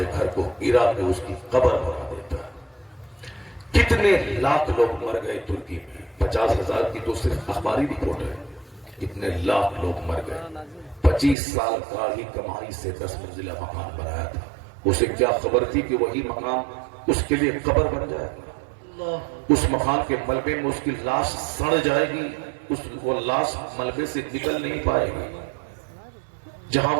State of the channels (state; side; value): drops out; left; at 11.4 s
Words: گھر کو گرا کے اس کی قبر بنا دیتا ہے۔ کتنے لاکھ لوگ مر گئے ترکی میں، 50,000 کی تو صرف اخباری رپورٹ ہے، کتنے لاکھ لوگ مر گئے۔ 25 سال کا ہی کمائی سے 10 منزلہ مکان بنایا تھا، اسے کیا خبر تھی کہ وہی مکان اس کے لیے قبر بن جائے گا، اس مکان کے ملبے میں اس کی لاش سڑ جائے گی، وہ لاش ملبے سے نکل نہیں پائے گی، جہاں